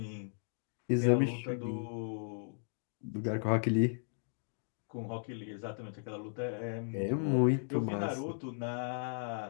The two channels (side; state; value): right; silent; digital silence